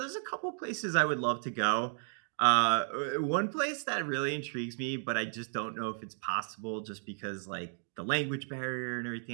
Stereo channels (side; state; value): left; silent; 55 dB below the other